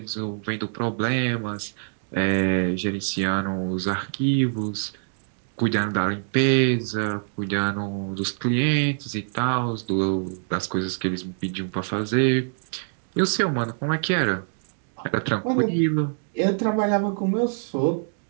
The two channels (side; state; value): left; silent; digital silence